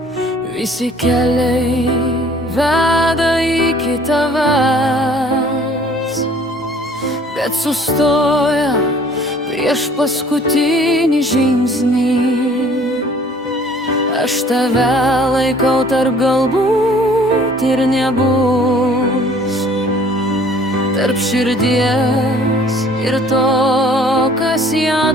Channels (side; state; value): both; normal; correlation 0.54